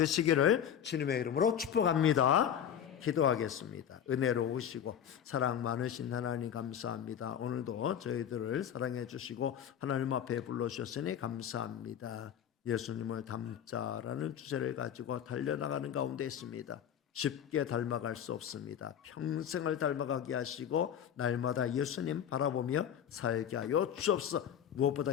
주님의 이름으로 축복합니다. 기도하겠습니다. 은혜로우시고 사랑 많으신 하나님 감사합니다. 오늘도 저희들을 사랑해 주시고 하나님 앞에 불러주셨으니 감사합니다. 예수님을 닮자라는 주제를 가지고 달려나가는 가운데 있습니다. 쉽게 닮아갈 수 없습니다. 평생을 닮아가게 하시고 날마다 예수님 바라보며 살게 하여 주옵소서. 무엇보다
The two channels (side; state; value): right; quieter; 9.2 dB